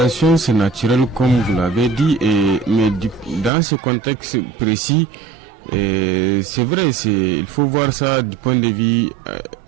c'est naturel comme vous l'avez dit, mais dans ce contexte précis, c'est vrai, il faut voir ça du point de vue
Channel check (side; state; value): left; drops out; at 3.5 s